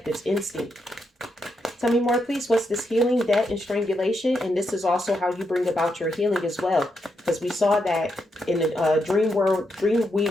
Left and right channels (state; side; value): normal; both; correlation 0.82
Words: instinct. Tell me more, please. What's this healing, debt, and strangulation? And this is also how you bring about your healing as well. Because we saw that in the